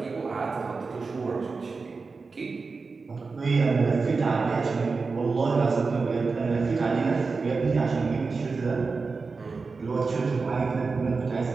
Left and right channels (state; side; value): quieter; left; 4.4 dB